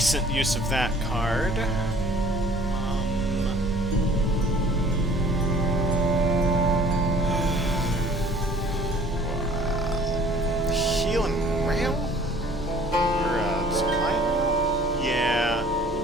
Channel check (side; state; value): both; normal; correlation 0.53